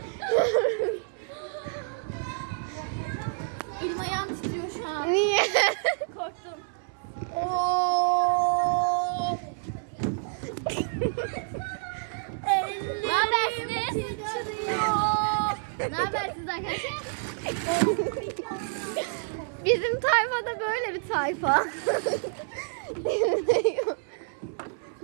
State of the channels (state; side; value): silent; left; 59 dB below the other